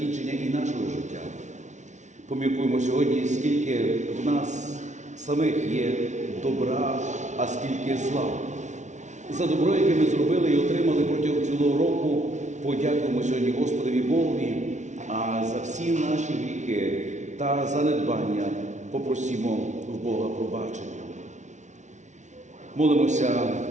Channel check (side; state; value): left; late; 0.35 ms